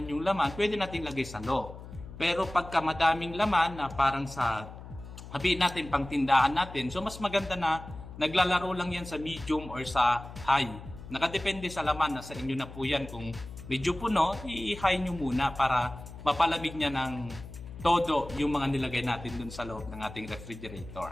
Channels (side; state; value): left; noise; hum, 14 dB below the sound